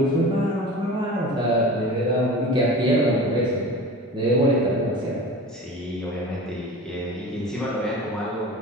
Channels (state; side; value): normal; both; correlation 0.35